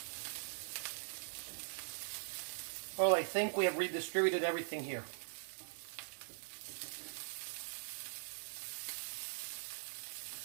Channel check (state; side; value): silent; left; digital silence